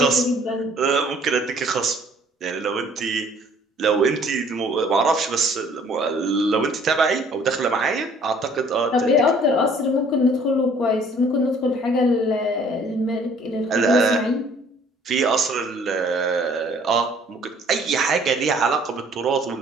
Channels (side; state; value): both; normal; correlation 0.57